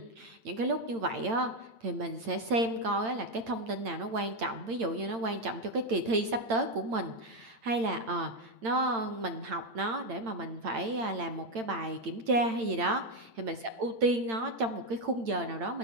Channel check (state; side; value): late; left; 8.8 ms